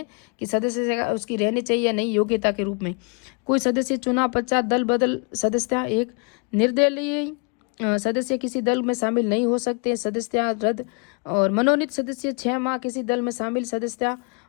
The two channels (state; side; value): quieter; right; 32.9 dB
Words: कि सदस्य उसकी रहनी चाहिए या नहीं, योग्यता के रूप में। कोई सदस्य चुनाव पश्चात दल बदल सदस्यता, एक निर्दलीय सदस्य किसी दल में शामिल नहीं हो सकते, सदस्यता रद्द। और मनोनीत सदस्य 6 माह किसी दल में शामिल सदस्यता।